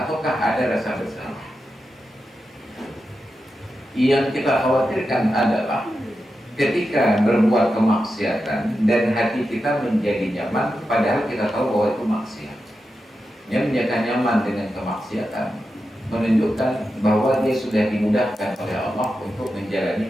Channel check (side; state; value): both; normal; correlation 0.90